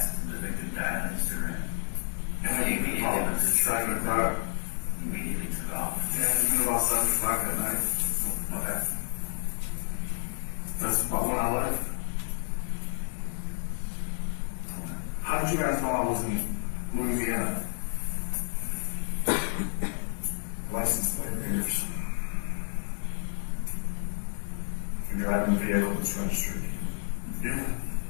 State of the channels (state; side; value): silent; right; 58 dB below the other